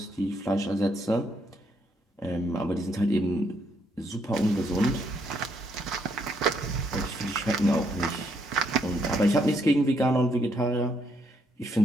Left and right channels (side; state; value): both; normal; correlation 0.73